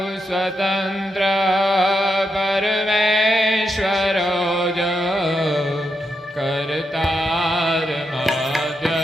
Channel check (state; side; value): normal; both; correlation 0.84